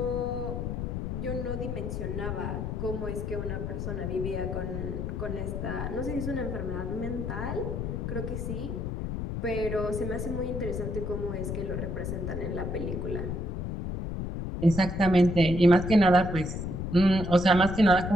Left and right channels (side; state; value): left; noise; rumble, 4 dB below the sound